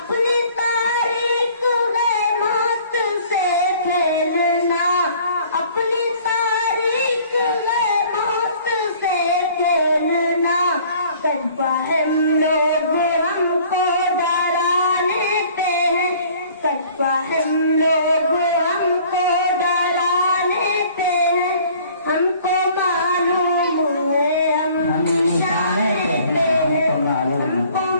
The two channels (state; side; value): inverted; both; correlation -0.53